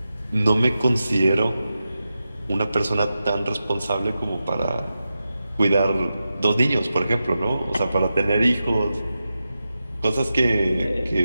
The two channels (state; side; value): inverted; both; correlation -0.91